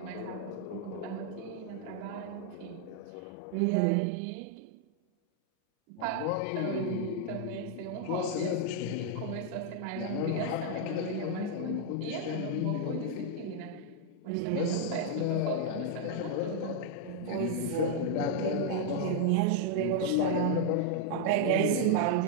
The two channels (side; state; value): both; different; correlation -0.01